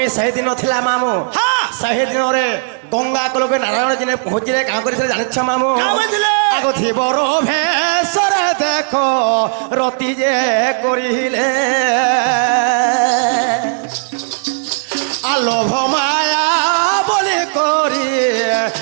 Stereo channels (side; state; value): left; silent; digital silence